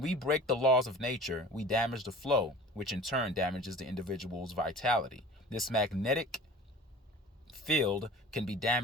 break the laws of nature, we damage the flow, which in turn damages the individual's vitality. This magnetic field can be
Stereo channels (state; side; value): normal; both; correlation 0.41